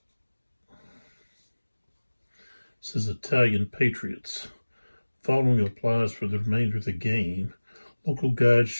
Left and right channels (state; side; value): inverted; both; correlation -1.00